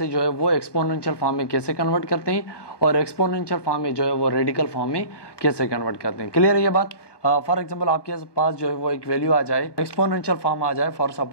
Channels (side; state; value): right; late; 1.2 ms